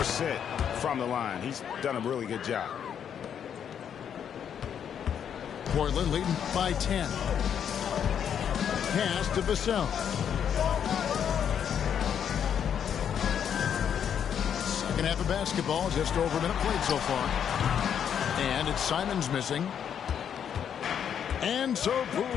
from the line. He's done a really good job. Portland leading by 10. Pass to Vassell. Second half of basketball, just over a minute played so far. And it's Simons missing. And so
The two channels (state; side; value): quieter; right; 8.5 dB